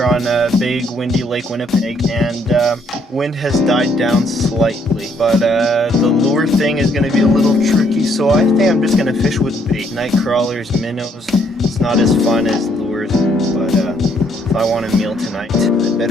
here on a big windy Lake Winnipeg, and wind has died down slightly, but the lure thing is going to be a little tricky, so I think I'm just going to fish with bait. Night crawlers, minnows, it's not as fun as lures, but if I want a meal tonight, I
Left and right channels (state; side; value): normal; both; correlation 0.69